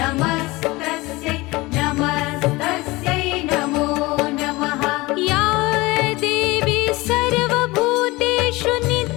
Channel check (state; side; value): quieter; right; 21.7 dB